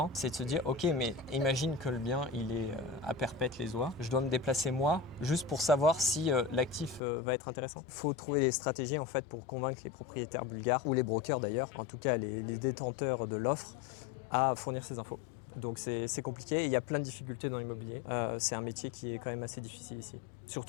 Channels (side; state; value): right; drops out; at 7.0 s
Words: c'est de se dire, ok, mais imagine que le bien, il est à perpète les oies. Je dois me déplacer moi, juste pour savoir si l'actif va être intéressant. Il faut trouver des stratégies en fait pour convaincre les propriétaires bulgares, ou les brokers d'ailleurs, en tout cas les détenteurs de l'offre, à fournir ces infos. Donc c'est compliqué, il y a plein de difficultés dans l'immobilier. C'est un métier qui est quand même assez difficile ici.